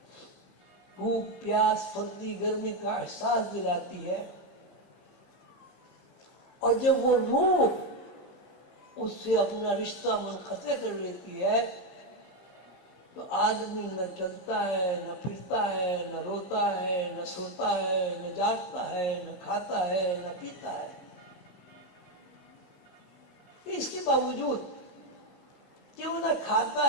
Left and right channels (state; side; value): late; right; 15 ms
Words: بھوک پیاس سردی گرمی کا احساس دلاتی ہے، اور جب وہ روح اس سے اپنا رشتہ منقطع کر لیتی ہے تو آدمی نہ چلتا ہے، نہ پھرتا ہے، نہ روتا ہے، نہ سوتا ہے، نہ جاگتا ہے، نہ کھاتا ہے، نہ پیتا ہے۔ اس کے باوجود کہ وہ نہ کھاتا